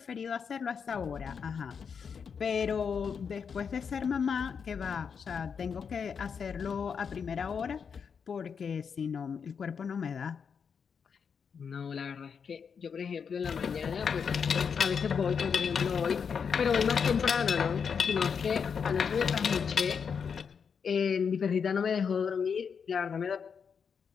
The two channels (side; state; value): right; quieter; 6.4 dB